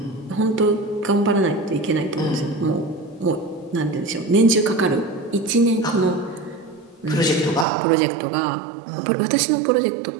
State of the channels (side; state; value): left; drops out; at 7.7 s